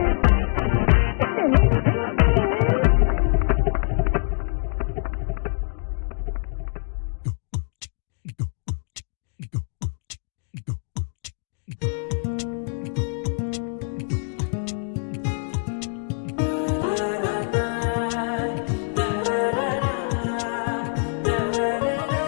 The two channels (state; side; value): silent; right; digital silence